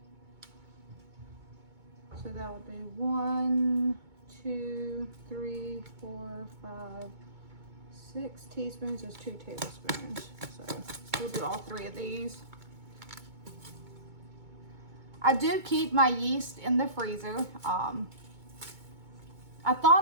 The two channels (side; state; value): left; late; 2.2 ms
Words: So that would be 1, 2, 3, 4, 5, 6 teaspoons is 2 tablespoons. So we'll do all 3 of these. I do keep my yeast in the freezer. I